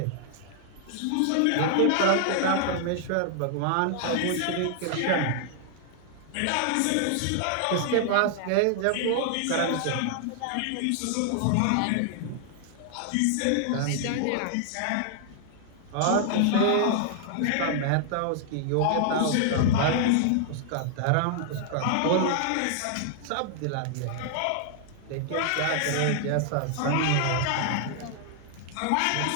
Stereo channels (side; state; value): both; different; correlation -0.01